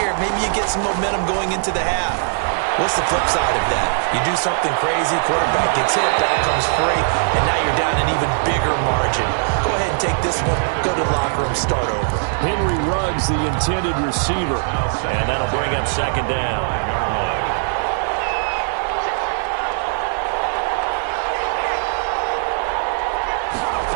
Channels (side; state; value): left; silent; 57 dB below the other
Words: Maybe you get some momentum going into the half. What's the flip side of that? You do something crazy, quarterback gets hit, ball comes free, and now you're down an even bigger margin. Go ahead and take this one, go to the locker room, start over. Henry Ruggs, the intended receiver, and that'll bring up second down.